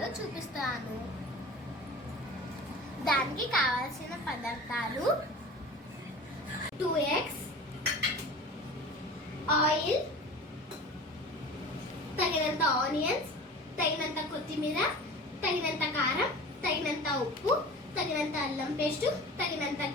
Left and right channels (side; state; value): both; normal; correlation 0.37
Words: చూపిస్తాను. దానికి కావాల్సిన పదార్థాలు 2 eggs, ఆయిల్, తగినంత ఆనియన్స్, తగినంత కొత్తిమీర, తగినంత కారం, తగినంత ఉప్పు, తగినంత అల్లం పేస్ట్, తగినంత